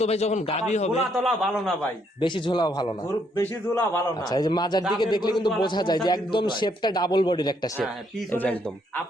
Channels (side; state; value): both; normal; correlation 0.72